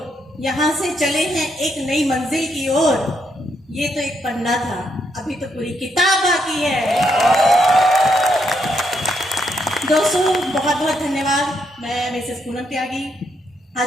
यहाँ से चले हैं एक नई मंजिल की ओर। ये तो एक पन्ना था, अभी तो पूरी किताब बाकी है। दोस्तों बहुत बहुत धन्यवाद। मैं मिसेस पूनम त्यागी। आज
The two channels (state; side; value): normal; both; correlation 0.77